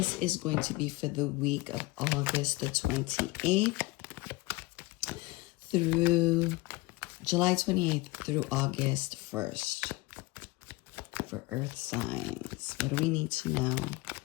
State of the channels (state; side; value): quieter; right; 22.2 dB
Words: is going to be for the week of August the 28th through July 28th through August 1st for earth signs. What do we need to know?